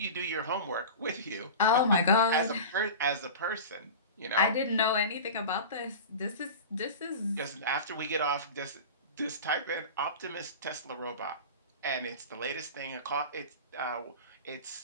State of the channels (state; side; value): inverted; both; correlation -0.31